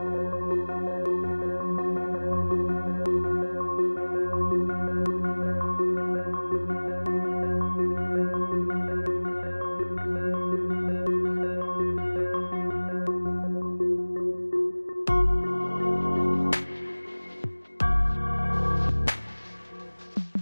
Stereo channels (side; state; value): both; inverted; correlation -1.00